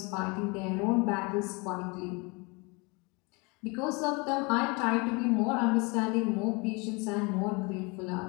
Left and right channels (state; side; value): quieter; right; 28.7 dB